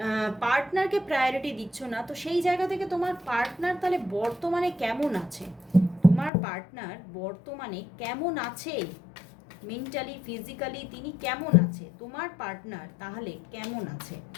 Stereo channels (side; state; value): right; drops out; at 6.3 s